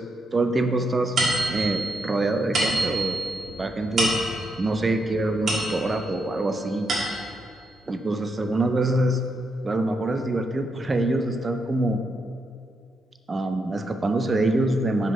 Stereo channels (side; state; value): both; normal; correlation 0.81